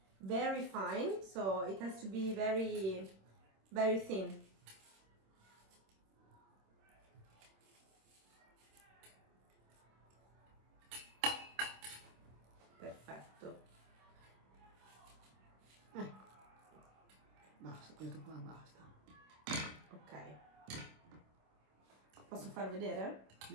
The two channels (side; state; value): left; late; 26 ms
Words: Very fine, so it has to be very, very thin. Perfetto. Ecco, basta, questo qua basta. Ok. Posso far vedere?